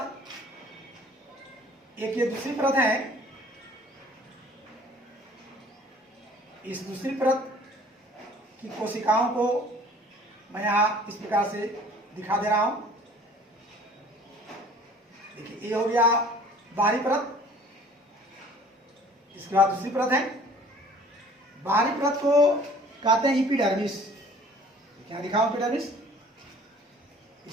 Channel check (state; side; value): normal; both; correlation 0.51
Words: एक ये दूसरी परत है। इस दूसरी परत की कोशिकाओं को मैं यहाँ इस प्रकार से दिखा दे रहा हूं। देखिए ये हो गया बाहरी परत। इसके बाद दूसरी परत है। बाहरी परत को कहते हैं एपिडर्मिस। क्या लिखा हूं? एपिडर्मिस। इस